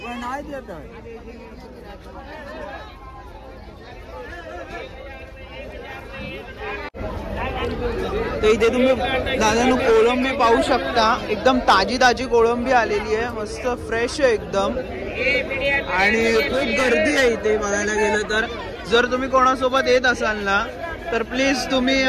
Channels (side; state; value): both; identical; correlation 1.00